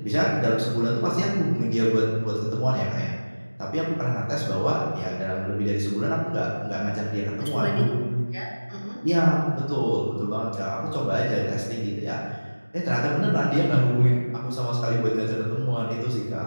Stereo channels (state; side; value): inverted; both; correlation -1.00